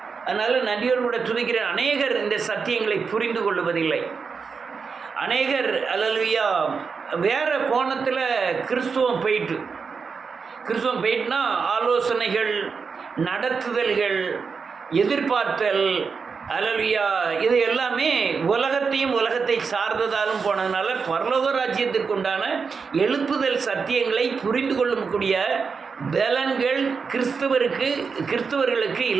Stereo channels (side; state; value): left; quieter; 5.3 dB